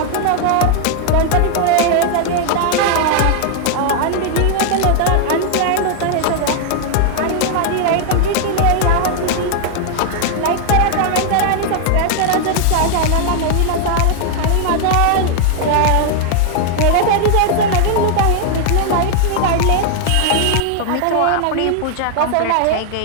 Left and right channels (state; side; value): different; both; correlation 0.00